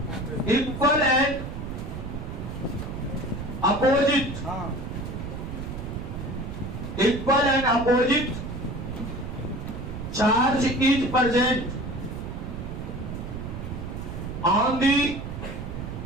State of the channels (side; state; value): right; noise; rumble, 7 dB below the sound